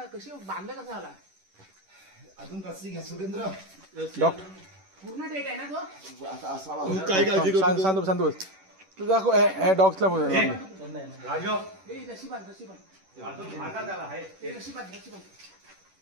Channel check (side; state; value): left; late; 10 ms